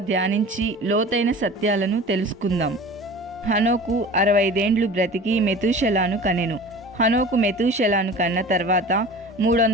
ధ్యానించి లోతైన సత్యాలను తెలుసుకుందాం. హనోకు 65 ఏండ్లు బ్రతికి మెతూషెలాను కనెను. హనోకు మెతూషెలాను కన్న తర్వాత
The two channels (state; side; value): normal; both; correlation 0.39